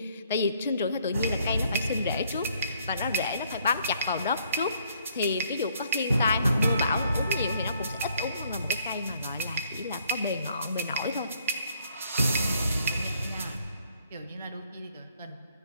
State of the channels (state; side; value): inverted; both; correlation -0.66